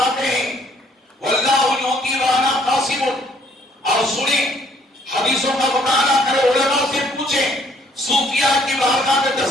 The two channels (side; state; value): both; normal; correlation 0.63